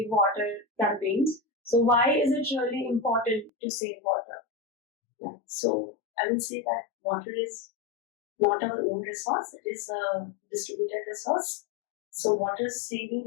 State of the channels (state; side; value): drops out; right; at 3.5 s